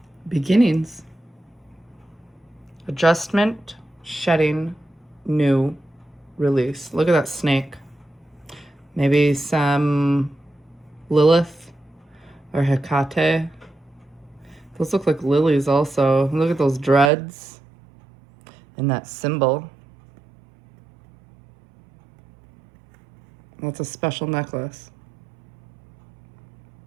Beginnings. Adjustment, shedding, new, release. Look at that snake. Maybe some Lilith or Hecate. Those look like lilies also. Look at those dreads and that symbol. That's a special necklace.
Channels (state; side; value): drops out; left; at 17.1 s